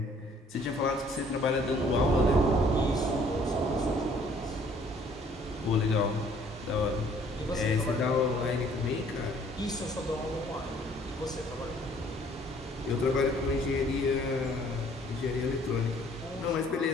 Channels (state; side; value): normal; both; correlation 0.59